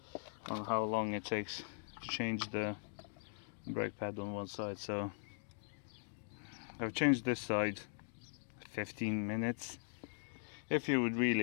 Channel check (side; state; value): right; silent; digital silence